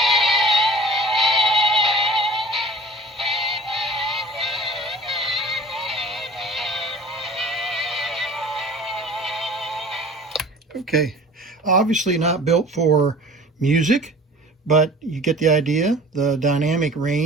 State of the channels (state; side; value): normal; both; correlation 0.43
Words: Okay, obviously not built for music, but you get the idea. The dynamic